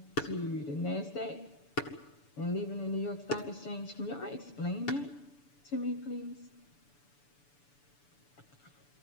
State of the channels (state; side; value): late; right; 6.9 ms